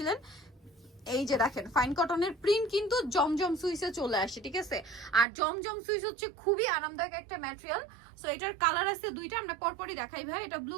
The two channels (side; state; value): left; drops out; at 5.2 s